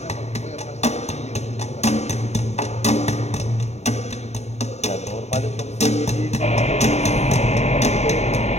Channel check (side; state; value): right; late; 0.32 ms